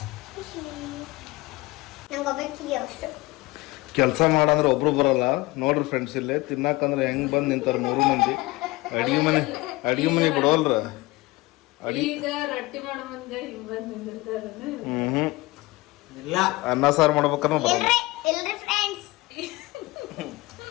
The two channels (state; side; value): quieter; right; 21.1 dB